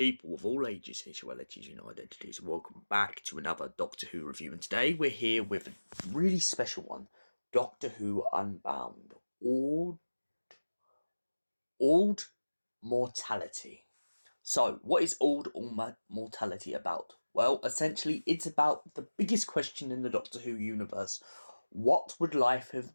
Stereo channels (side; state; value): both; inverted; correlation -1.00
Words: of all ages, sexualities, and identities. Welcome back to another Doctor Who review. And today we're here with a really special one, Doctor Who Unbound, Auld Mortality. So, what is Auld Mortality about? Well, essentially, it's about the biggest question in the Doctor Who universe. What would life